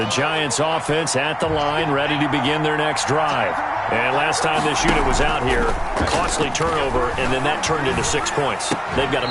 Giants offense at the line, ready to begin their next drive. And last time this unit was out here, costly turnover, and then that turned into 6 points. They've got to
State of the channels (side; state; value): both; identical; correlation 1.00